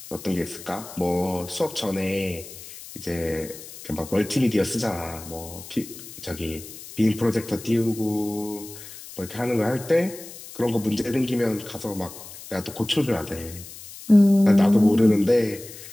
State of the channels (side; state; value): left; noise; hiss, 15 dB below the sound